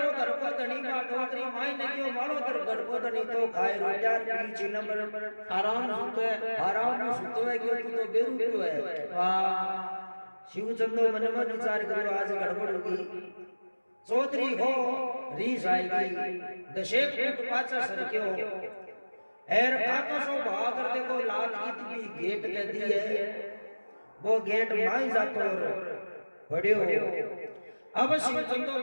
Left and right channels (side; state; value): both; inverted; correlation -1.00